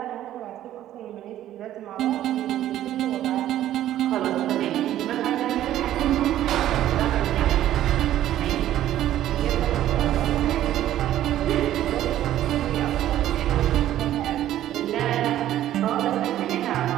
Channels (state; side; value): quieter; left; 12.6 dB